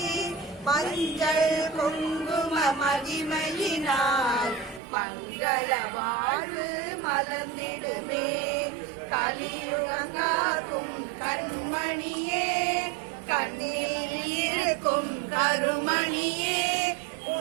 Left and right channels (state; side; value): drops out; left; at 4.8 s